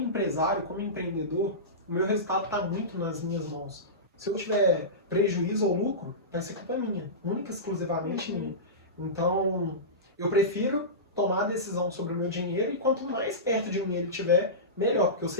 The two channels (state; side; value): normal; both; correlation -0.19